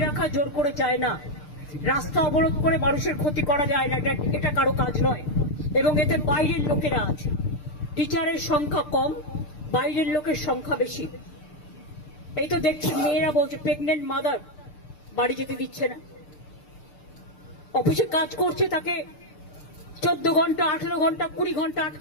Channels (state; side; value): late; right; 6.7 ms